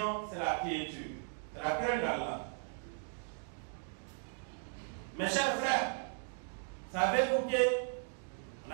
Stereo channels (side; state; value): left; silent; 53 dB below the other